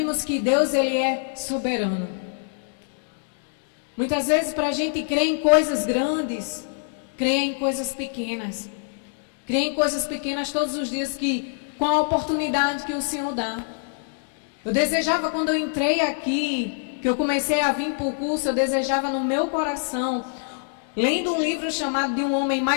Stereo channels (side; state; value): right; silent; digital silence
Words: que Deus ele é soberano. Muitas vezes para a gente crer em coisas grandes, crer em coisas pequenas. Crer em coisas pequenas todos os dias com a oportunidade que o Senhor dá. Eu desejava quando eu entrei aqui, que eu comecei a vir para o curso, eu desejava no meu coração, lendo um livro chamado de um homem,